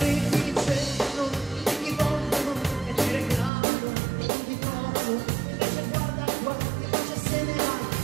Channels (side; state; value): left; drops out; at 3.5 s